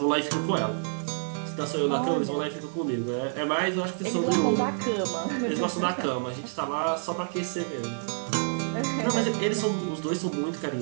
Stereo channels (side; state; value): left; silent; 59 dB below the other